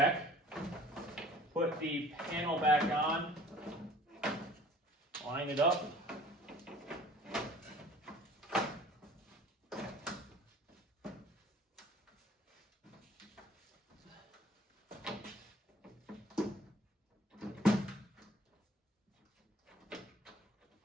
Put the panel back on, line it up.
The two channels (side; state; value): both; normal; correlation 0.50